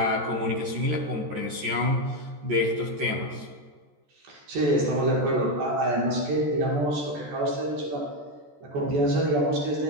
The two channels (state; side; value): late; left; 14 ms